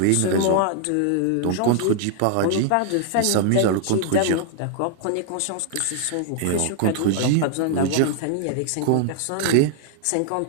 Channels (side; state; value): both; different; correlation 0.00